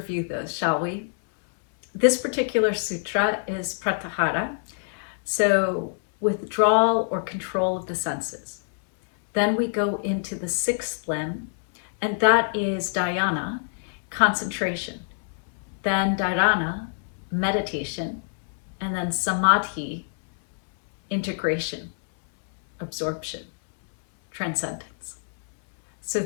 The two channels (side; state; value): right; silent; 61 dB below the other